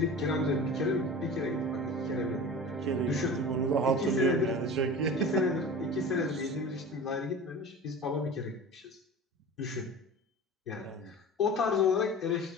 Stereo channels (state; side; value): normal; both; correlation 0.35